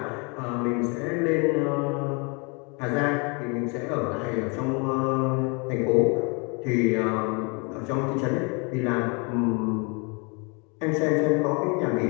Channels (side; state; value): right; quieter; 32.6 dB